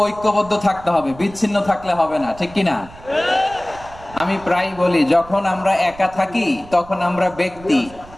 ঐক্যবদ্ধ থাকতে হবে, বিচ্ছিন্ন থাকলে হবে না, ঠিক কিনা? আমি প্রায় বলি, যখন আমরা একা থাকি তখন আমরা ব্যক্তি,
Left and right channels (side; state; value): right; noise; rumble, 19 dB below the sound